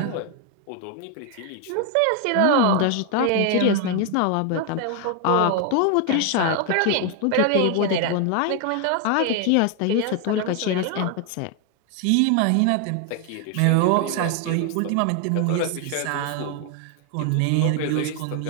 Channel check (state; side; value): different; both; correlation 0.01